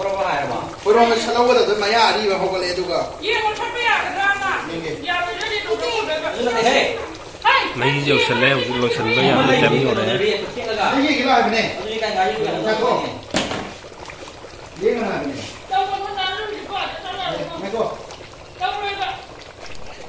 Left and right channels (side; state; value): both; identical; correlation 1.00